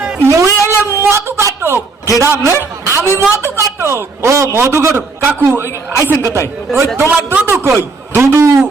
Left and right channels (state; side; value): quieter; left; 4.0 dB